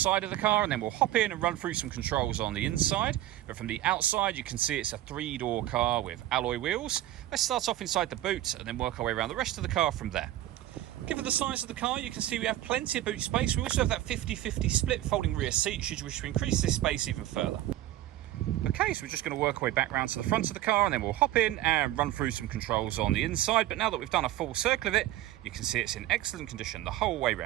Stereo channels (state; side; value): quieter; left; 14.4 dB